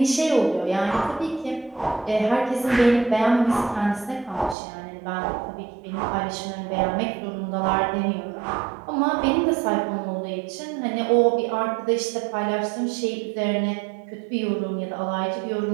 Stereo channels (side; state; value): left; drops out; at 4.5 s